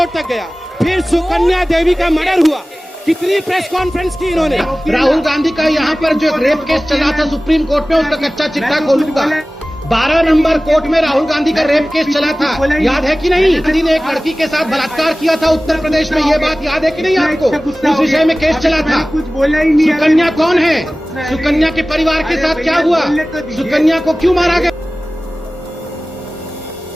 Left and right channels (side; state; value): both; normal; correlation 0.97